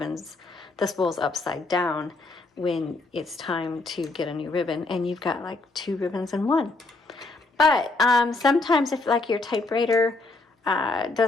spools upside down when it's time to get a new ribbon, and you've got like 2 ribbons in one. But sometimes if like your typewriter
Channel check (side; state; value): right; quieter; 3.4 dB